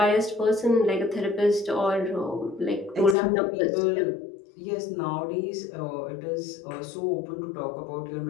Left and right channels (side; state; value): right; drops out; at 3.2 s